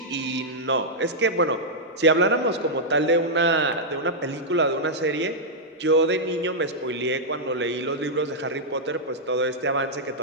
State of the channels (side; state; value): both; normal; correlation -0.06